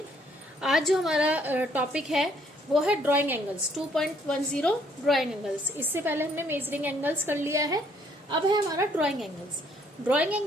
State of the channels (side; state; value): both; normal; correlation 0.65